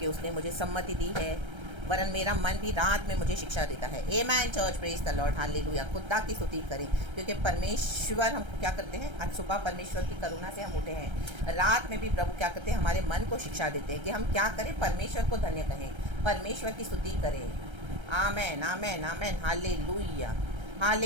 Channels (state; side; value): late; left; 1.3 ms